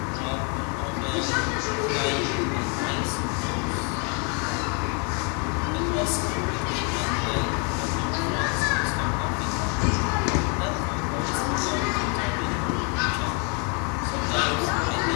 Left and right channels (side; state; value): right; quieter; 34.5 dB